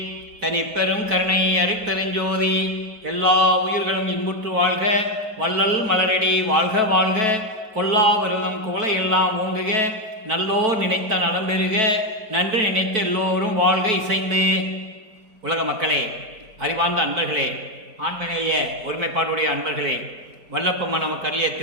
தனிப்பெரும் கருணை அருட்பெருஞ்சோதி. எல்லா உயிர்களும் இன்புற்று வாழ்க, வள்ளல் மலரடி வாழ்க வாழ்க, கொல்லா விரதம் குவளை எல்லாம் ஓங்குக, நல்லோர் நினைத்த நலம் பெறுக, நன்று நினைத்த எல்லோரும் வாழ்க இசைந்து. உலக மக்களே, அறிவார்ந்த அன்பர்களே, ஆண்மநேய ஒருமைப்பாடுடைய அன்பர்களே, வல்லப்பம்மா நமக்கு அருளிய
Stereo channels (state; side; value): late; left; 4.5 ms